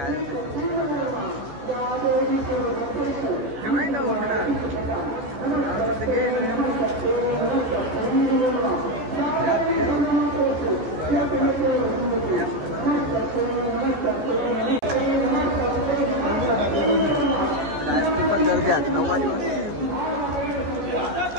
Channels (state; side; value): late; left; 14 ms